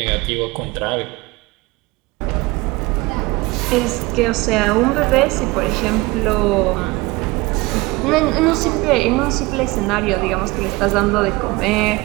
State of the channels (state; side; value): quieter; left; 22.8 dB